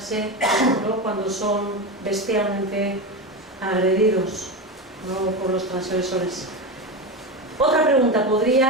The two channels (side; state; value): both; normal; correlation 0.18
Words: ¿no?, cuando son bestialmente agredidos, ¿no?, por los transgresores. Otra pregunta: